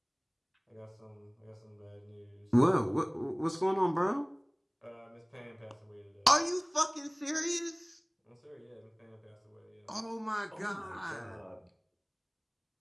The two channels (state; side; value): identical; both; correlation 1.00